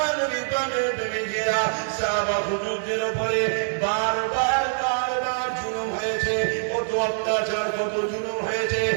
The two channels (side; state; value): left; silent; 57 dB below the other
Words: বিপদের প্রেমিকেরা সাহাবা হুজুরদের উপরে বারবার জুলুম হয়েছে, কত অত্যাচার, কত জুলুম হয়েছে।